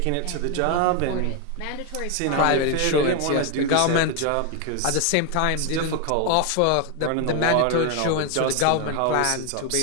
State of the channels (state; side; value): different; both; correlation 0.01